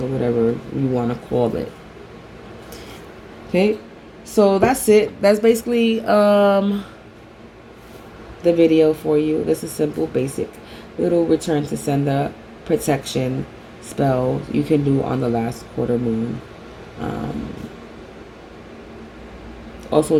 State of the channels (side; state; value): both; identical; correlation 1.00